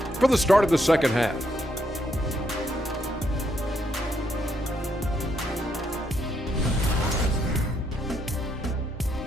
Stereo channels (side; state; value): both; normal; correlation 0.76